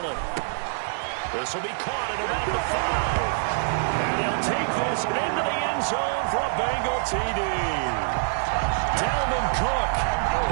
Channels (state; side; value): silent; left; 61 dB below the other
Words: This will be caught at about the 5. And he'll take this into the end zone for a Bengal TD. Dalvin Cook